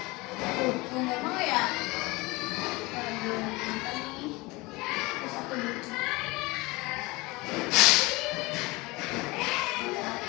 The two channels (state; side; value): quieter; right; 23.1 dB